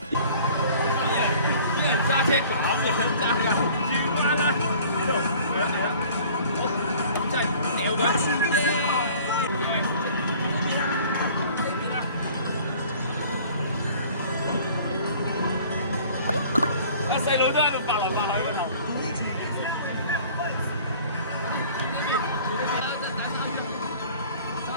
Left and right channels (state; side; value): inverted; both; correlation -0.49